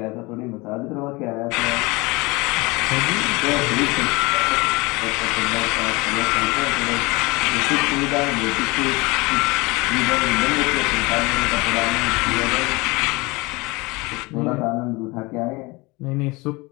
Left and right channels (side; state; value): right; quieter; 24.4 dB